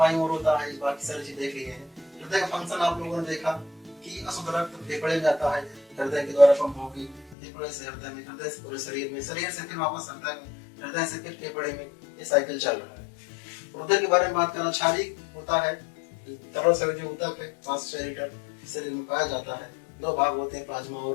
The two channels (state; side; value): drops out; right; at 7.4 s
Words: और होता है, बाकी सारी चीज देख लिए हैं। हृदय का फंक्शन आप लोगों ने देखा कि अशुद्ध रक्त फेफड़े में जाता है, हृदय के द्वारा पंप होगी, फेफड़े से हृदय में, हृदय से पूरे शरीर में, शरीर से फिर वापस हृदय में, हृदय से फिर फेफड़े में, ये साइकिल चल रहा है। रुधिर के बारे में बात करना, क्षारीय होता है, तरल से जो ऊतक है 5 लीटर शरीर में पाया जाता है। 2 भाग होते हैं, प्लाज्मा और